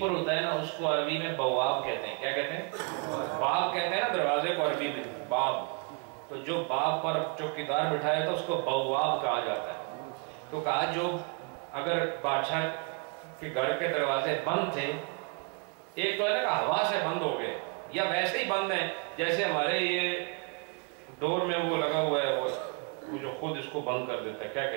ہوتا ہے نا، اس کو عربی میں بواب کہتے ہیں۔ کیا کہتے ہیں؟ باب کہتے ہیں نا دروازے کو عربی میں، باب۔ تو جو باب پر چوکیدار بٹھایا تھا اس کو بواب کہا جاتا ہے۔ تو کہا جو اگر بادشاہ کے گھر کے دروازے بند تھے، ایک تو ہے نا کہ ہوا سے بند ہو گئے یا ویسے ہی بند ہیں، جیسے ہمارے یہ ڈور میں وہ لگا ہوا ہے، وہ جو خود اس کو بند کر دیتا ہے، کیا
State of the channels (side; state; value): left; quieter; 36.2 dB